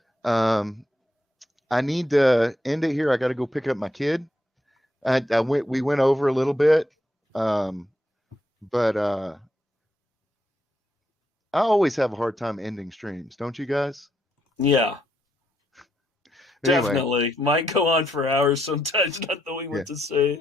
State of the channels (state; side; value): normal; both; correlation 0.79